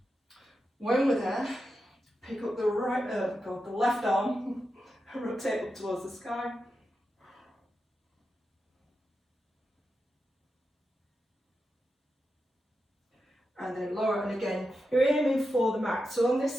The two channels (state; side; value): normal; both; correlation 0.89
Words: When we're there, pick up the the left arm and rotate up towards the sky. And then lower, and again, you're aiming for the mat. So on